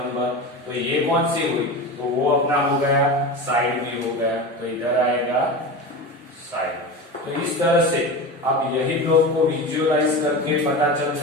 तो ये कौन सी हुई, तो वो अपना हो गया साइड भी हो गया, तो इधर आएगा साइड। तो इस तरह से आप यही ब्लॉक को विजुअलाइज करके पता चल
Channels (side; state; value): both; normal; correlation 0.27